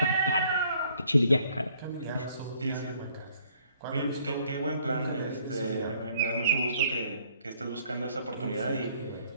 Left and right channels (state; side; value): inverted; both; correlation -0.63